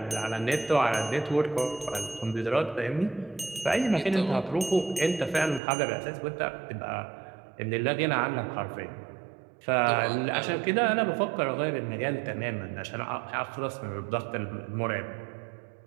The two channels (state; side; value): drops out; left; at 5.6 s